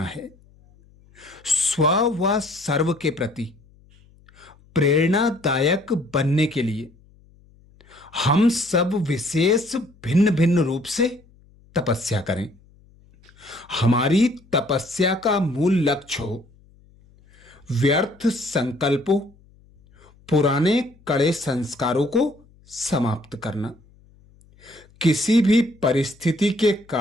है। स्व व सर्व के प्रति प्रेरणादायक बनने के लिए हम सब विशेष भिन्न भिन्न रूप से तपस्या करें। हमारी तपस्या का मूल लक्ष्य हो व्यर्थ संकल्पों, पुराने कड़े संस्कारों को समाप्त करना। किसी भी परिस्थिति के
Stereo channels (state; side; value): noise; left; hum, 29 dB below the sound